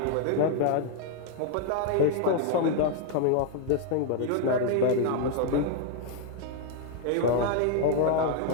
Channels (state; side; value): different; both; correlation 0.00